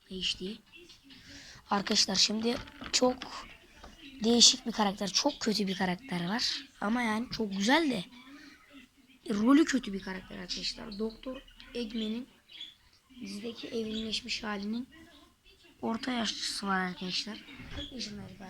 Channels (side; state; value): both; identical; correlation 1.00